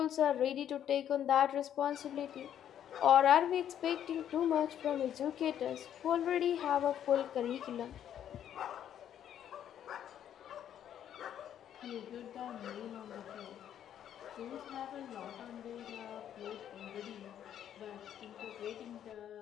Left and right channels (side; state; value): right; quieter; 10.1 dB